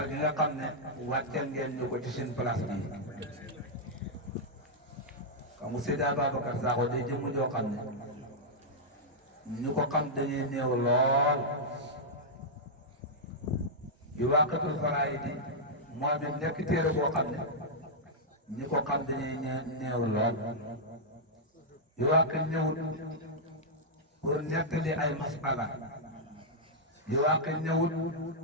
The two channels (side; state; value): both; normal; correlation -0.07